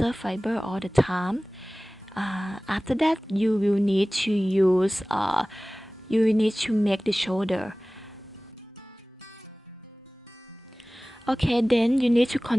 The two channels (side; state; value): both; normal; correlation 0.98